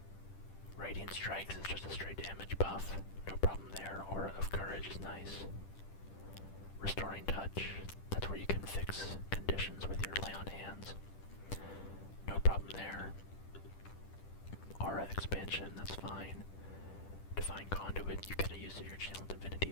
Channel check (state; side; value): late; right; 10 ms